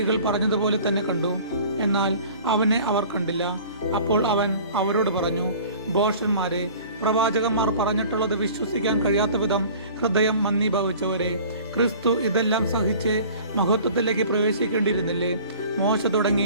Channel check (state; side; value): inverted; both; correlation -0.46